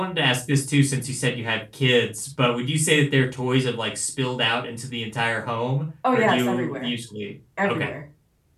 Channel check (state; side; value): identical; both; correlation 1.00